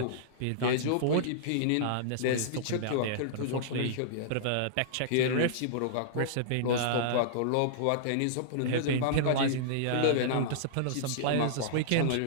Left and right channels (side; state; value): both; different; correlation -0.02